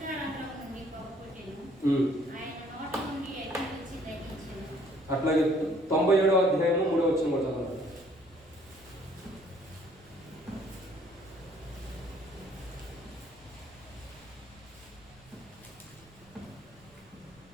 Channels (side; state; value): right; noise; rumble, 28 dB below the sound